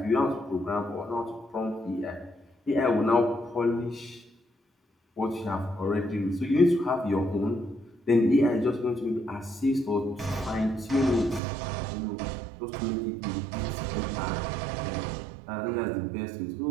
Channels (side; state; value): left; drops out; at 11.4 s